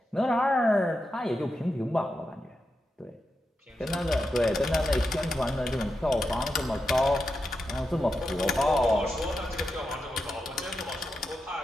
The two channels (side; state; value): both; normal; correlation 0.88